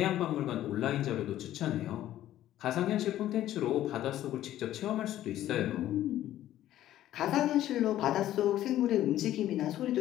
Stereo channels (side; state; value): right; quieter; 13.1 dB